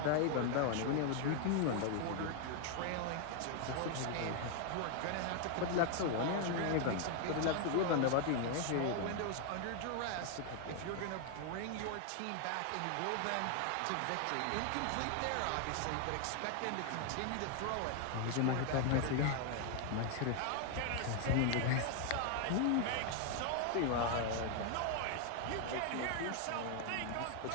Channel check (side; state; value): both; different; correlation 0.00